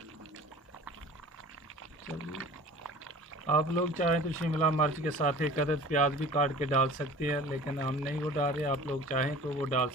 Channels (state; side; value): normal; both; correlation 0.43